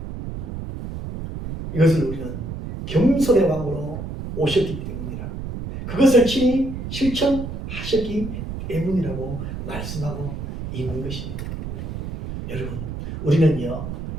이것을 우리는 겸손의 왕으로 오셨기 때문이라 그것을 친히 실천하셨기 때문이라고 말씀하고 있는 것입니다. 여러분 우리는요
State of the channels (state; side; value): noise; right; rumble, 7 dB below the sound